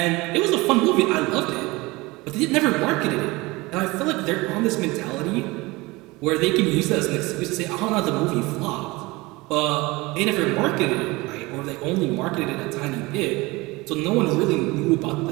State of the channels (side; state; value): left; quieter; 22.6 dB